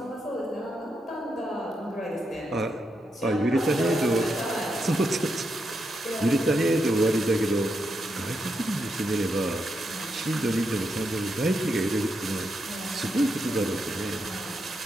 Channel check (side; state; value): both; normal; correlation 0.83